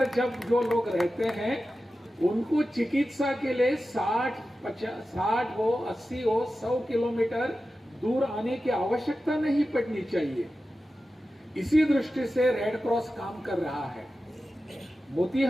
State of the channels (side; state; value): both; normal; correlation 0.93